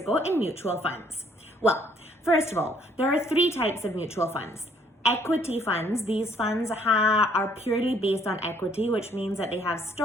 in mutual funds? Well, first of all, there are three types of mutual funds. Equity funds, these funds are purely based on equity, which means that they have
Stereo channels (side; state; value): both; normal; correlation 0.64